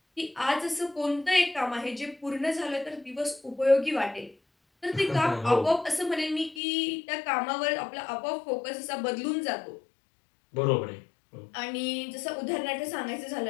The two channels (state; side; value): drops out; right; at 6.6 s